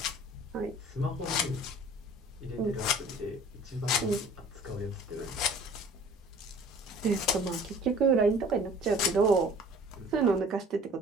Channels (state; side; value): normal; both; correlation 0.49